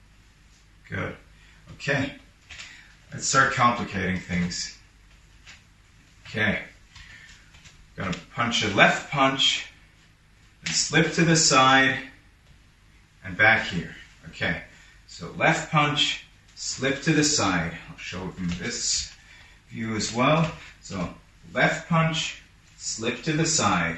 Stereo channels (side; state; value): both; identical; correlation 1.00